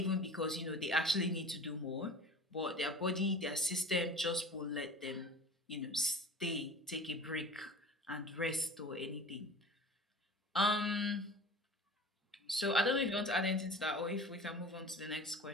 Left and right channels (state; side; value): normal; both; correlation 0.39